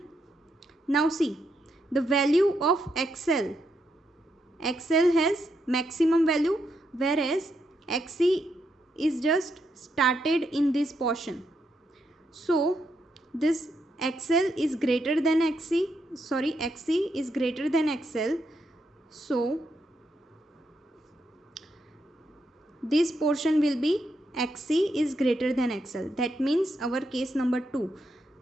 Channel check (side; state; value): both; normal; correlation 0.80